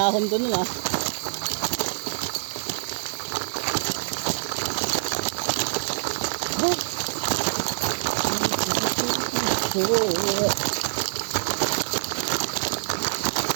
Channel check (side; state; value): left; silent; digital silence